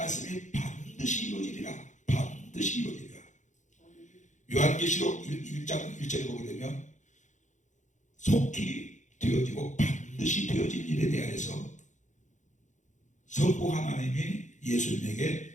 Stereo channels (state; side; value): late; right; 0.35 ms